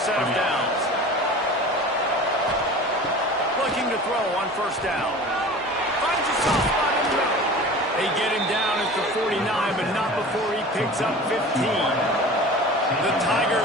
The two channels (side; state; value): both; normal; correlation 0.38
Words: of downs. Looking to throw on first down. Finds a soft spot in the middle. They get him down at the 49, but not before he picks up 15. The